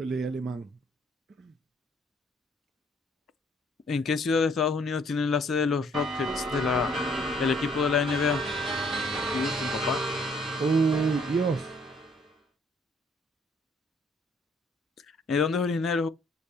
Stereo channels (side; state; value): both; normal; correlation 0.63